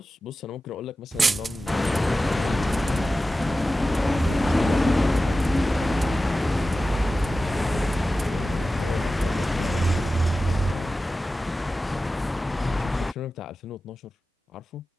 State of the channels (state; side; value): normal; both; correlation 0.94